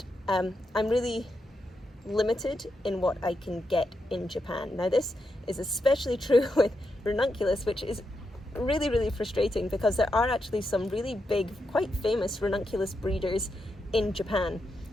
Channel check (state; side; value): normal; both; correlation 0.84